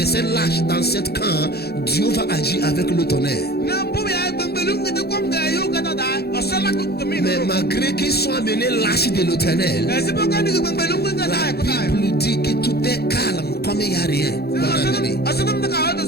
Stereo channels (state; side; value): late; right; 0.46 ms